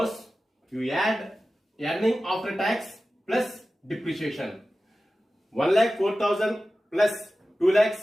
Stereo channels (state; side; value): normal; both; correlation 0.95